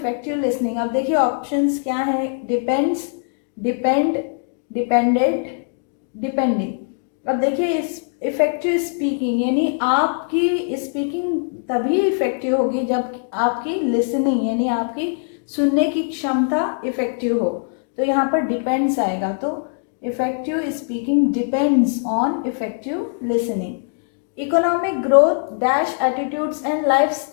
listening. अब देखिए ऑप्शंस क्या है, डिपेंड्स, डिपेंड, डिपेंडेंट, डिपेंडिंग। अब देखिए, इस इफेक्टिव स्पीकिंग यानी आपकी स्पीकिंग तभी इफेक्टिव होगी जब आपकी लिसनिंग यानी आपकी सुनने की क्षमता इफेक्टिव हो। तो यहाँ पर डिपेंड्स आएगा, तो effective speaking depends on effective listening. Economic growth dash attitudes and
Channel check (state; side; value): silent; right; 65 dB below the other